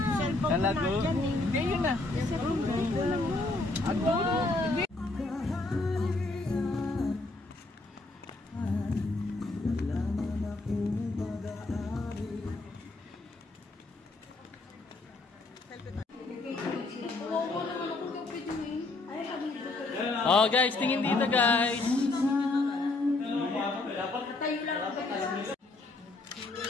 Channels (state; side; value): quieter; right; 3.2 dB